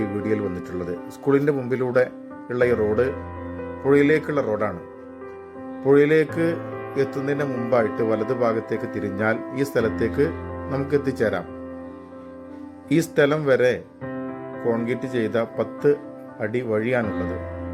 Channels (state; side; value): identical; both; correlation 1.00